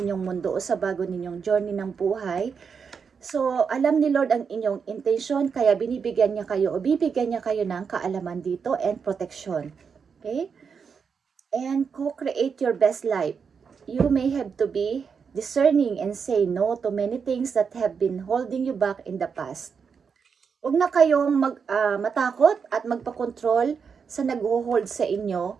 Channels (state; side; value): quieter; left; 6.1 dB